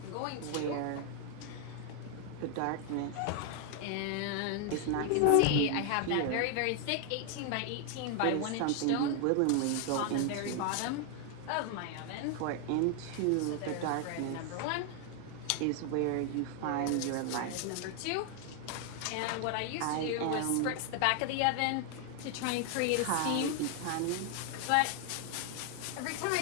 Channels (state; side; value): different; both; correlation 0.00